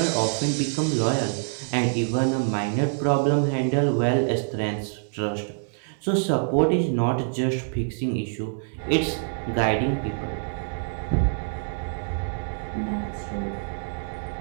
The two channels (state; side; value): silent; left; digital silence